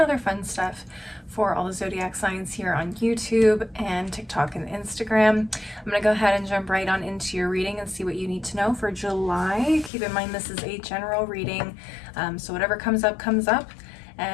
fun stuff for all the zodiac signs here on YouTube and TikTok and Instagram. I'm going to go ahead and jump right on into your reading and see what you need to know for July. Keep in mind this is a general reading, so whatever comes up, comes up.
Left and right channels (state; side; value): drops out; right; at 9.9 s